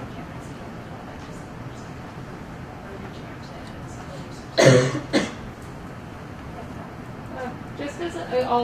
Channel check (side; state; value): both; identical; correlation 1.00